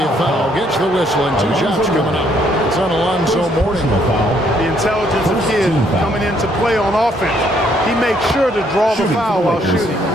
a foul. Gets the whistle, and 2 shots coming up. It's on Alonzo Mourning. The intelligence of Kidd coming into play on offense. He makes sure to draw the foul while shooting.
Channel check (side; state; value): both; normal; correlation 0.68